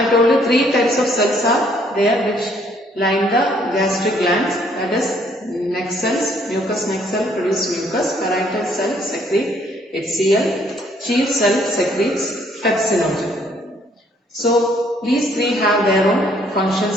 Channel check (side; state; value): both; normal; correlation 0.65